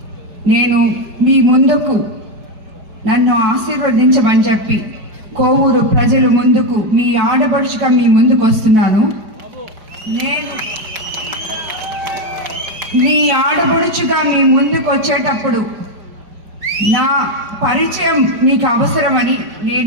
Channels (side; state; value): left; late; 5.1 ms